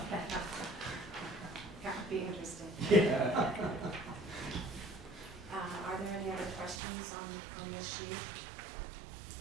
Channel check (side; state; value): left; drops out; at 6.8 s